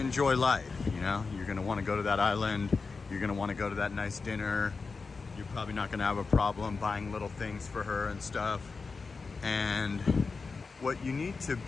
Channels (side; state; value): right; quieter; 4.5 dB